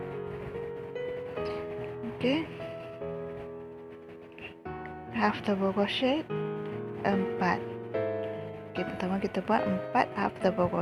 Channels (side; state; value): both; identical; correlation 1.00